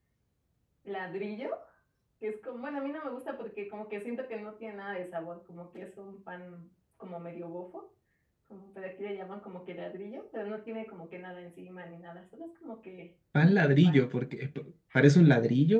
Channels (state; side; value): identical; both; correlation 1.00